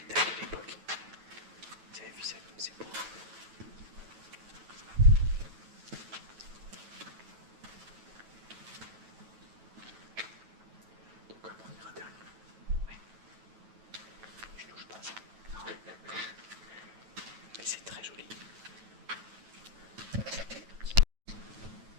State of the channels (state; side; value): late; left; 9.1 ms